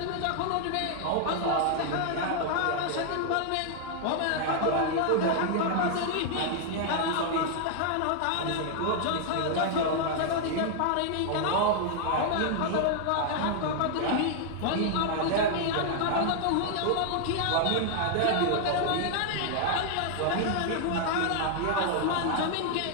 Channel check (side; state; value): both; different; correlation 0.00